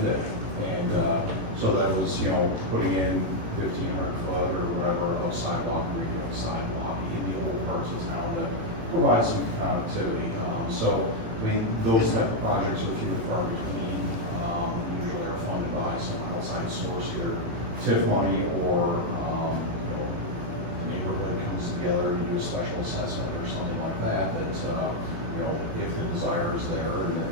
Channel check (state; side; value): late; left; 18 ms